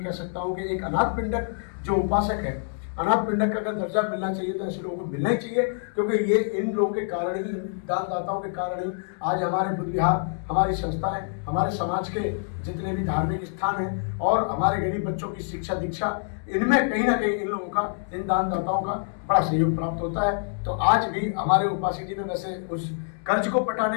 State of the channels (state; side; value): silent; right; digital silence